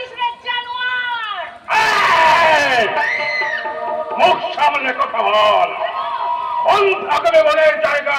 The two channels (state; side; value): identical; both; correlation 1.00